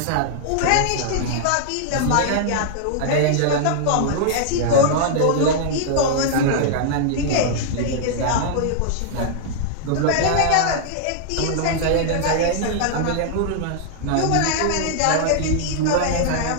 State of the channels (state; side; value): different; both; correlation -0.01